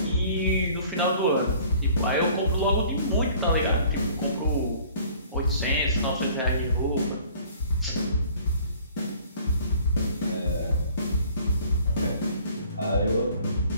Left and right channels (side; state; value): both; inverted; correlation -0.52